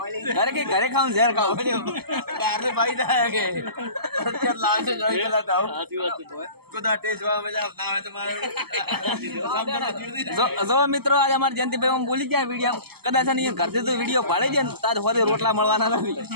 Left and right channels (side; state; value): left; late; 0.96 ms